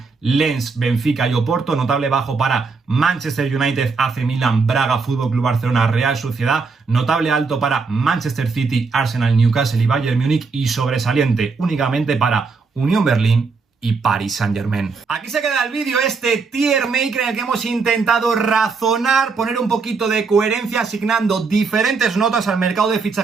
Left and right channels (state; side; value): quieter; left; 4.6 dB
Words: Lens, Benfica y Oporto. Notable bajo para Manchester United, AC Milan, Braga, Fútbol Club Barcelona, Real Sociedad. Notable alto para Manchester City, Arsenal, Newcastle y Bayern Múnich. Y sobresaliente únicamente para Unión Berlín y Paris Saint-Germain. Aquí se queda el vídeo, este tier maker en el que hemos intentado razonar, poner un poquito de coherencia, asignando diferentes notas al mercado de